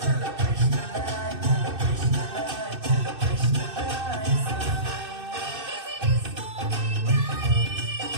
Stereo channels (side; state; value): left; late; 2.6 ms